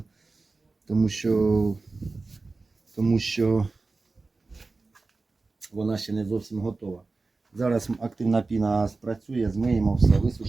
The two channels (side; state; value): left; quieter; 3.7 dB